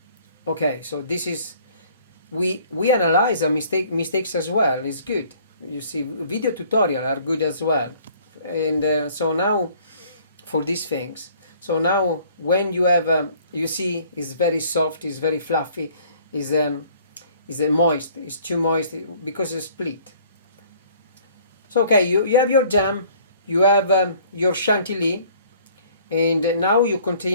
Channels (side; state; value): both; inverted; correlation -0.56